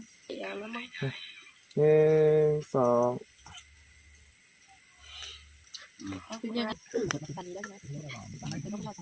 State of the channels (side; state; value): both; identical; correlation 1.00